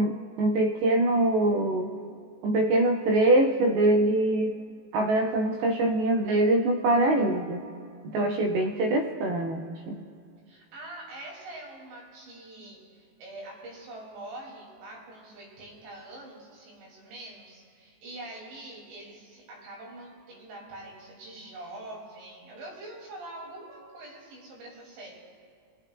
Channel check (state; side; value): late; left; 19 ms